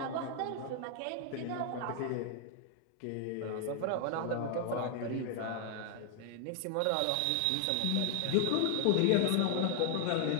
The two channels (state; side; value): different; both; correlation 0.00